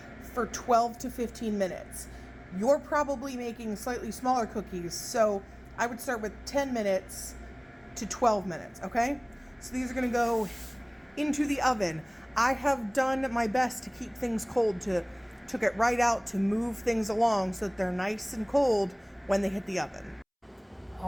for 12 to 15 minutes. You're probably making slightly smaller cookies, so I would start with 10 minutes to 12 minutes, okay? So these are going to go into the oven. I have done my best to keep things cold, took it right out to move things along so that they're nice and cold when they hit the oven.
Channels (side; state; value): both; identical; correlation 1.00